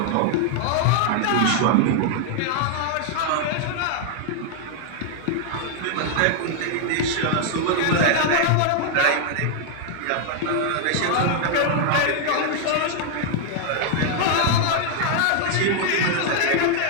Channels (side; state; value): both; different; correlation 0.00